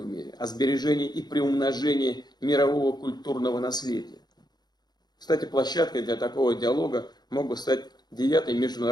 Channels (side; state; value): right; late; 0.20 ms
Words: мире, о сбережении и приумножении мирового культурного наследия. Кстати, площадкой для такого диалога мог бы стать 9-й